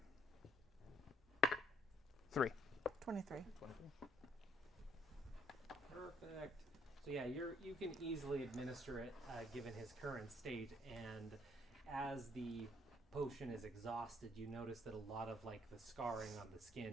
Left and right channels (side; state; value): both; normal; correlation 0.65